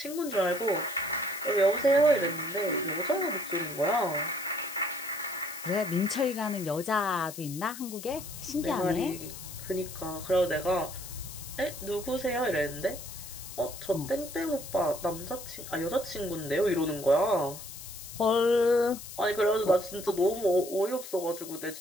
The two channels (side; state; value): left; noise; hiss, 12 dB below the sound